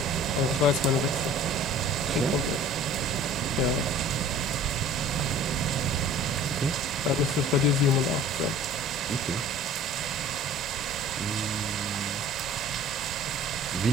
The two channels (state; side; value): normal; both; correlation 0.46